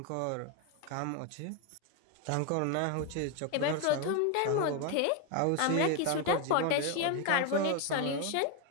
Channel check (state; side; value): different; both; correlation 0.02